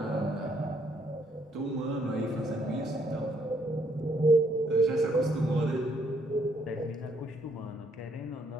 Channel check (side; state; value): both; normal; correlation 0.70